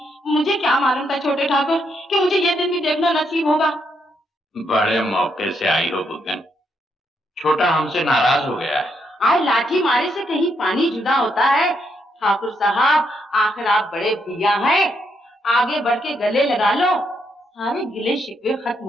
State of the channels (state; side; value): normal; both; correlation 0.77